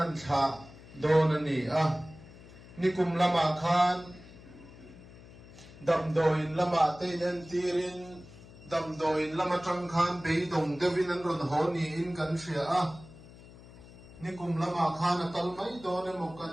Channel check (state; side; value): noise; left; hum, 19 dB below the sound